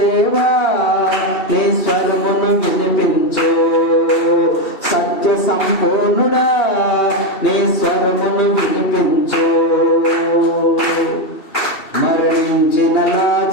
నీ స్వరమును వినిపించు,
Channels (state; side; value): late; right; 2.7 ms